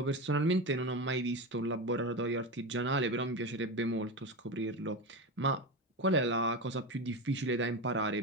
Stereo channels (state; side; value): normal; both; correlation 0.19